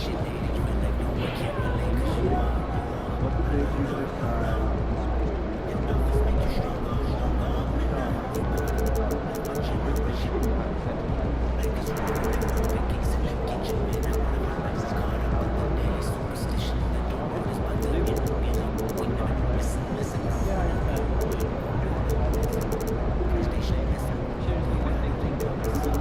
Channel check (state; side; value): identical; both; correlation 1.00